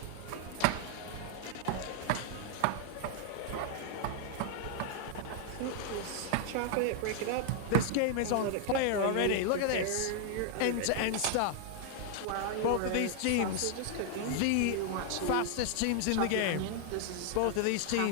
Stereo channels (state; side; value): different; both; correlation 0.00